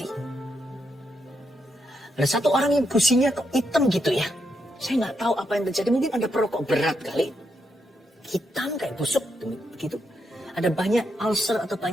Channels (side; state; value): both; normal; correlation 0.81